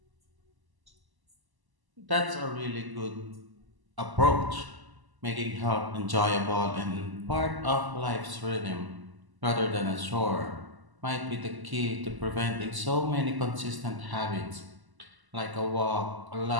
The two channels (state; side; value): late; left; 1.0 ms